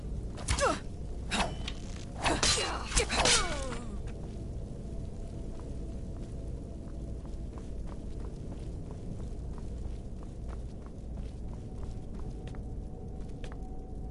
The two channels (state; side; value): identical; both; correlation 1.00